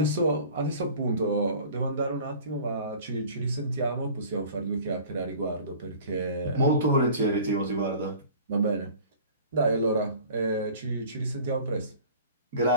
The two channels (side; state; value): both; inverted; correlation -0.44